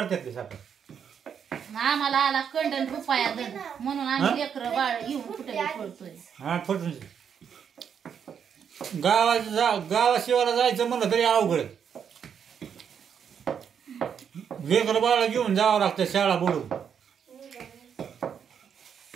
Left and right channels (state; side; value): quieter; left; 7.6 dB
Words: ते साखर. आम्हाला आला कंडन रुपया दर म्हणून आम्ही लेकरं बाळ येऊन कुठे पळतोय. हा फुटून गावाशिवाला जायचं म्हणलं तरी अवघड. लेकर बाळा घेऊन जावं लागतं शाळा बुडून.